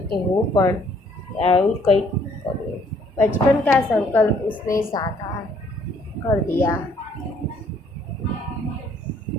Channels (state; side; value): normal; both; correlation 0.63